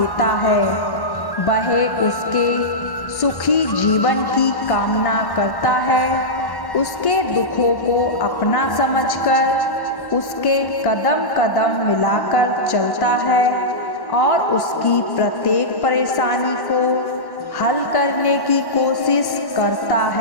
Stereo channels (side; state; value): right; late; 1.1 ms